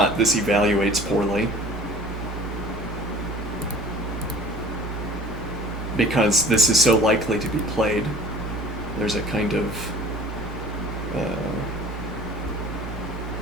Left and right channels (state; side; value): normal; both; correlation 0.45